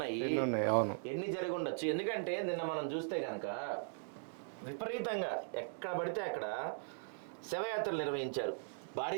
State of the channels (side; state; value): left; silent; digital silence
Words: ఎన్ని జరిగి ఉండొచ్చు. ఎందుకంటే నిన్న మనం చూస్తే కనుక విపరీతంగా ఎక్కడ పడితే అక్కడ శవయాత్రలు నిర్వహించారు